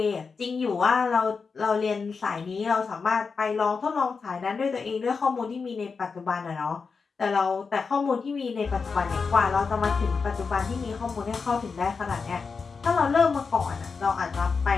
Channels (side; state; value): right; quieter; 5.0 dB